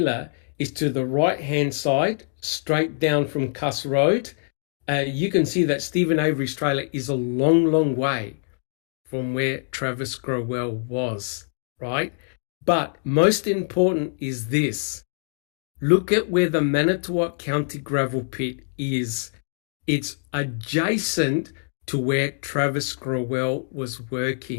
is to the right-hand side straight down from Cuss Road, you can see that Stephen Avery's trailer is a long, long way from where Travis Growell was, right? But most important is this. Look at where the Manitowoc County gravel pit is. It's adjacent to where Travis Growell was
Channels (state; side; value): silent; right; digital silence